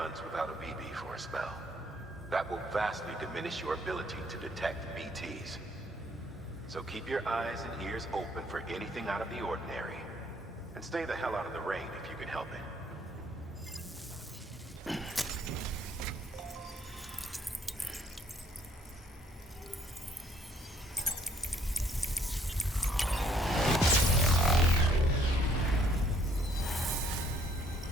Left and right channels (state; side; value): normal; both; correlation 0.64